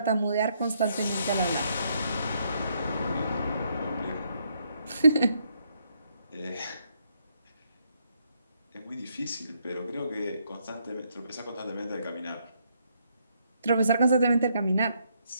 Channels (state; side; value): inverted; both; correlation -0.74